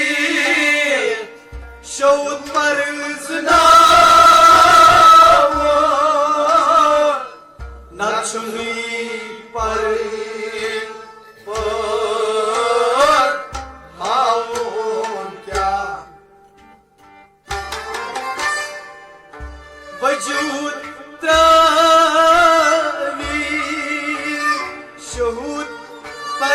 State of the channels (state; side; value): identical; both; correlation 1.00